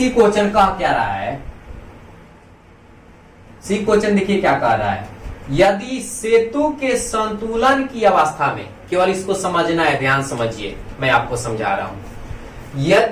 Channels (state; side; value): identical; both; correlation 1.00